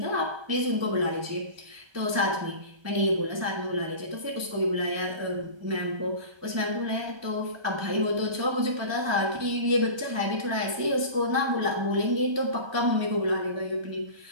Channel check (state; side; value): late; left; 1.3 ms